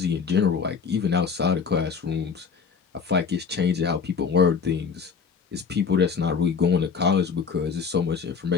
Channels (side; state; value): right; quieter; 5.9 dB